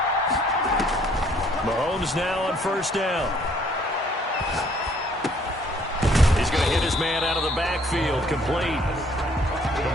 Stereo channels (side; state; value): both; normal; correlation 0.62